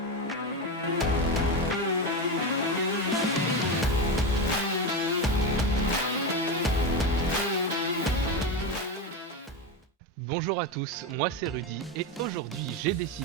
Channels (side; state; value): both; normal; correlation 0.16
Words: Bonjour à tous, moi c'est Rudy et aujourd'hui j'ai